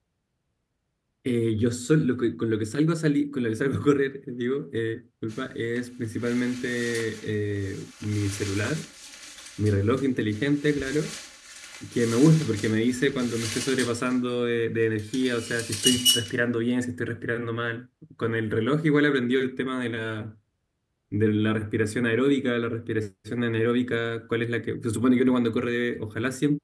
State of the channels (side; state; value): both; identical; correlation 1.00